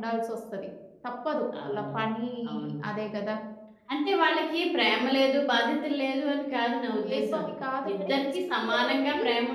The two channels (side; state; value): both; identical; correlation 1.00